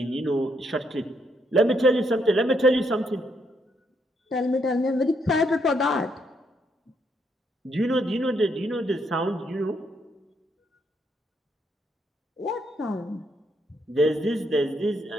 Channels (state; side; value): normal; both; correlation 0.75